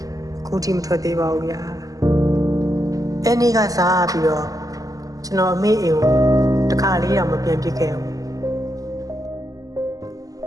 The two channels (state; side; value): late; left; 0.17 ms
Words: ခုထိမထွက်သေးပါဘူးဗျာ။အဲ့နေ့ကစားပြီးတော့ကျွန်တော်အမေအိမ်ကိုတခါလေးတော့မပြန်ပြစ်ခဲ့ဘူး